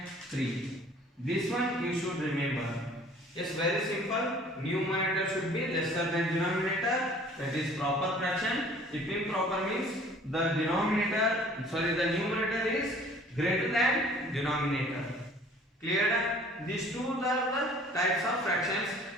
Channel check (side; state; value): both; normal; correlation 0.52